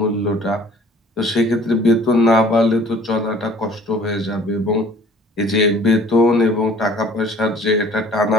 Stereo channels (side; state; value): both; normal; correlation 0.53